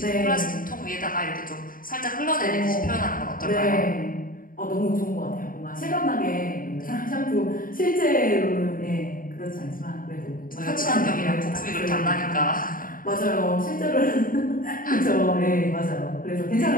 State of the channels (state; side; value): late; right; 0.41 ms